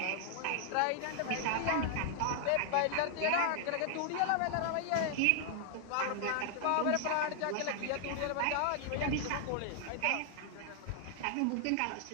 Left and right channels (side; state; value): both; different; correlation -0.01